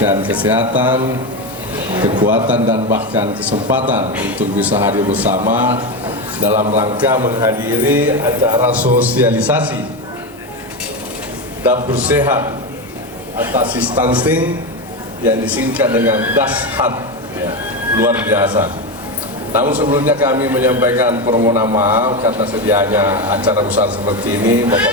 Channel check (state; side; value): normal; both; correlation 0.15